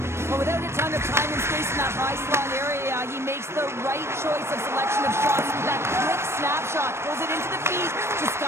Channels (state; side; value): late; left; 0.13 ms